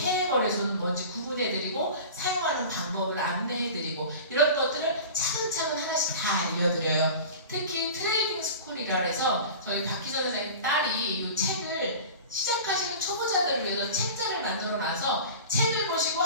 거래소는 뭔지 구분해드리고 사용하는 방법을 안내해드리고 이런 것들을 차근차근 하나씩 다 알려드려요. 특히 트레이딩 스쿨이라 해서 저희 박희선 선생님 딸이 이 책을 시작하시는 초보자들을 위해서 책자를 만들어놔서 책을 보시고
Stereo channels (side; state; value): both; inverted; correlation -0.35